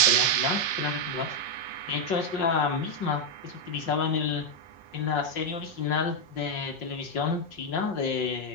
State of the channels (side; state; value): right; late; 5.5 ms